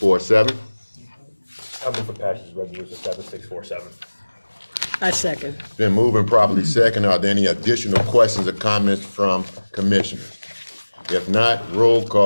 I'll move for passage of resolution 7647. I second. Been moving properly second. Are there any additional questions or comments from commissioners? If not, roll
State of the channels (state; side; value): inverted; both; correlation -1.00